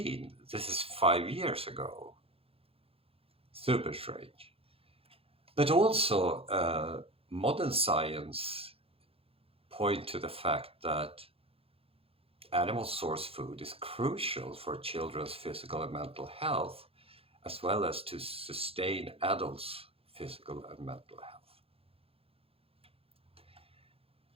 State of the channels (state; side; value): late; left; 0.28 ms